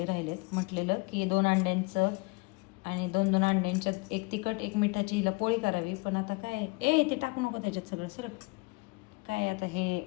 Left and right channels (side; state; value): right; quieter; 26.9 dB